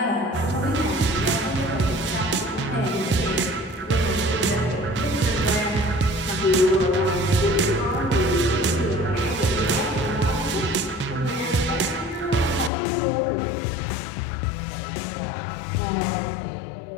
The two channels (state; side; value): drops out; right; at 12.7 s